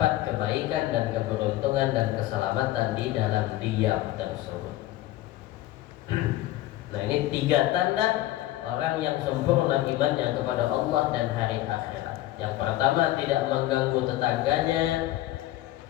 kebaikan dan keberuntungan dan keselamatan di dalam diam tersebut. Nah, ini 3 tanda orang yang sempurna imannya kepada Allah dan hari akhirat. Yang pertama, tidak mengganggu tetangganya,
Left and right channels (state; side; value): quieter; right; 15.4 dB